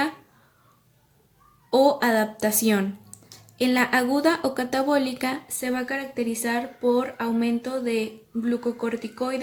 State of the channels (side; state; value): both; identical; correlation 1.00